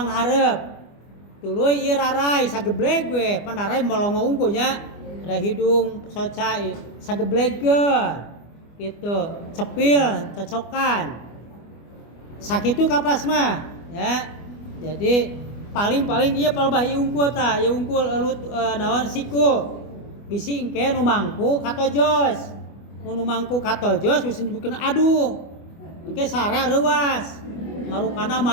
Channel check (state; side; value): late; right; 25 ms